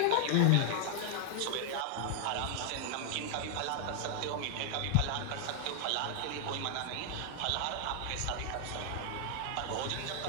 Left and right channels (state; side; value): different; both; correlation 0.00